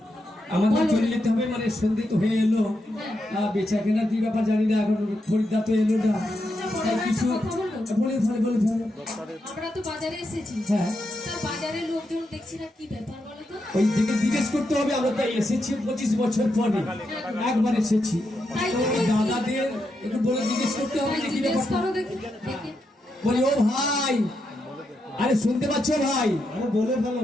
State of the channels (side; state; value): both; normal; correlation 0.84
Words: আমাদের চলে যেতে হবে, মানে সন্ধে তো হয়ে এলো, বেচা কেনার কি ব্যাপার জানি না, এখন খরিদ্দার তো এলো না, কিছু বলে ফেলে বলে ফেলে। আমরা তো বাজারে এসেছি, হ্যাঁ তার বাজারে লোকজন দেখছি না, কি ব্যাপার বলো তো? ওই দিকে জিজ্ঞেস করতে হবে, আমরা তো এসেছি 25 বছর পরে একবার এসেছি, দাদাদের একটু বলে জিজ্ঞেস করতে হবে যে কি ব্যাপার। বলি ও ভাই, আরে শুনতে পাচ্ছ ভাই? আরে বলে